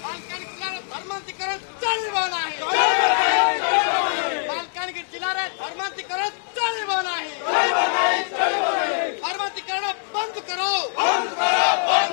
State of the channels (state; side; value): silent; right; 63 dB below the other